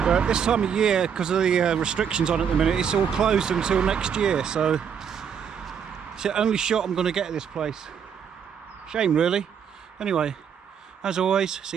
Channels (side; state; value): left; quieter; 7.6 dB